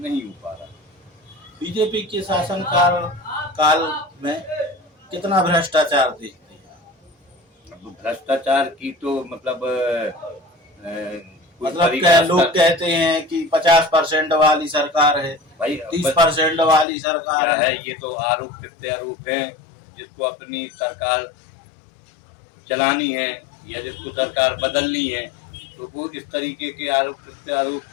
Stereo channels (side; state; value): right; drops out; at 16.9 s